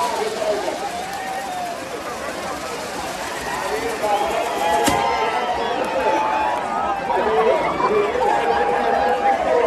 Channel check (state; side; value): identical; both; correlation 1.00